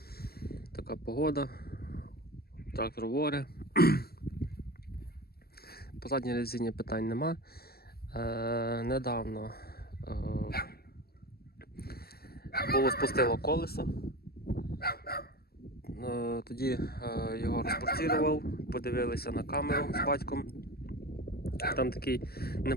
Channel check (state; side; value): late; right; 0.45 ms